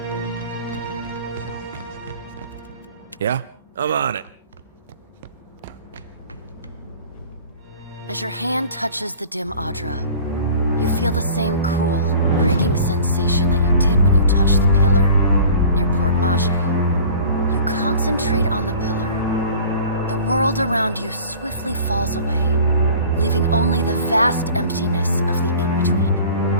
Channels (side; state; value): both; inverted; correlation -0.44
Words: Yeah? I'm on it. As your hand touches the dim Adra, you feel the same cool, pricking sensation that you did when you touched the pillar near Port Mage. You concentrate on the pillar. The world around you swiftly falls away, leaving only the vast emptiness of the